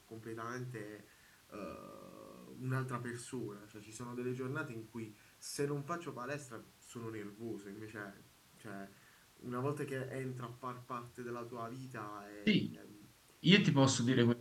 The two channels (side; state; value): both; identical; correlation 1.00